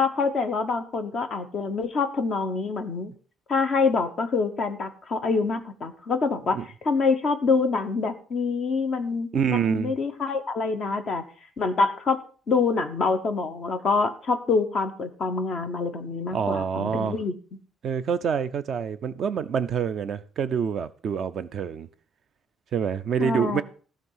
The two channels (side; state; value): both; normal; correlation 0.60